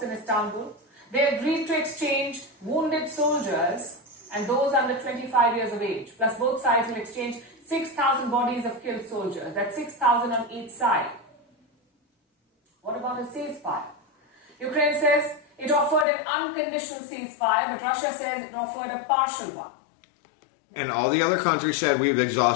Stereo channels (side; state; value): right; drops out; at 16.1 s